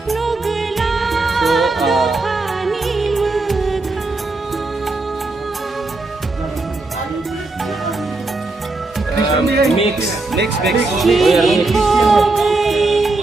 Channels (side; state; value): left; quieter; 3.2 dB